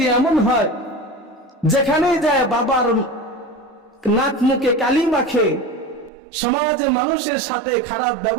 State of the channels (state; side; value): drops out; left; at 6.1 s